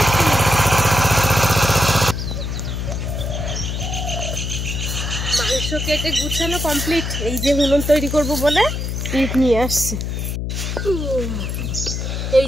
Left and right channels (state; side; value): noise; left; hum, 3 dB below the sound